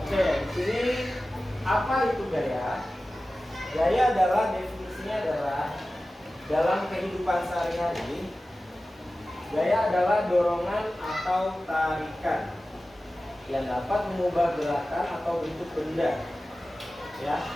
Oke, di sini apa itu gaya? Gaya adalah definisinya adalah dalam kehidupan sehari-hari, gaya adalah dorongan atau tarikan yang dapat mengubah gerakan atau bentuk benda. Ya.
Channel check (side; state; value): both; normal; correlation 0.95